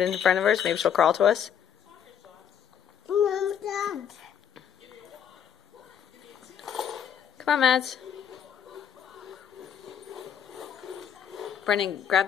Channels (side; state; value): right; quieter; 8.6 dB